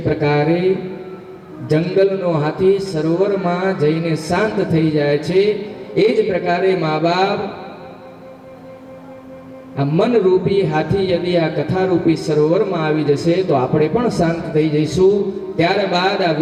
પ્રકારે જંગલનો હાથી સરોવરમાં જઈને શાંત થઈ જાય છે, એ જ પ્રકારે મા બાપ આ મન રૂપી હાથી યદી આ કથા રૂપી સરોવરમાં આવી જશે તો આપણે પણ શાંત થઈ જઈશું। ત્યારબાદ આ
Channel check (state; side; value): identical; both; correlation 1.00